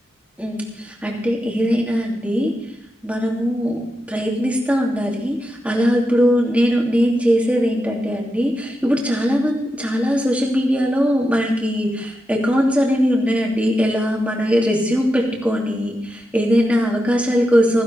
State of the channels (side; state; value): both; normal; correlation 0.88